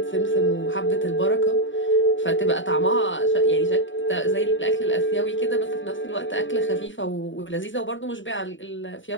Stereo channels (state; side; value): late; right; 0.55 ms